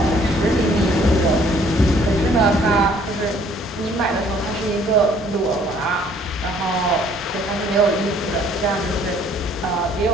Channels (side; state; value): both; normal; correlation 0.60